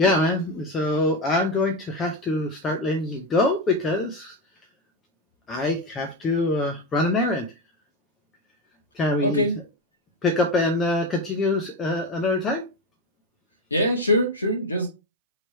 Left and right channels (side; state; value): both; normal; correlation 0.14